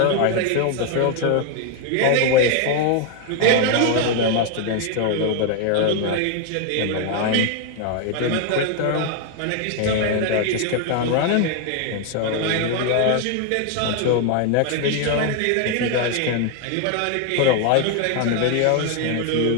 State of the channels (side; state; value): both; different; correlation 0.01